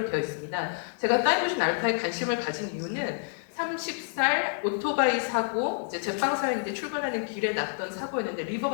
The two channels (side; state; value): right; silent; digital silence